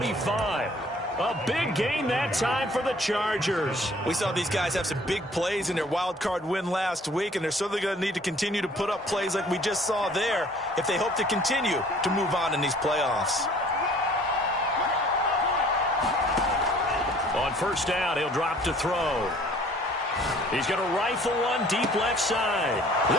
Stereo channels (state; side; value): normal; both; correlation 0.54